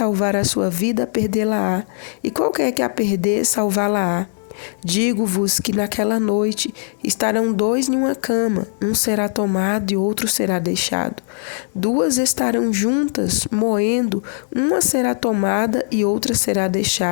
a sua vida, perdê-la-á, e qualquer que a perder, salvá-la-á. Digo-vos que naquela noite estarão 2 em uma cama, um será tomado e outro será deixado. 2 estarão juntas, moendo, uma será tomada e outra será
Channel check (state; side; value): silent; right; digital silence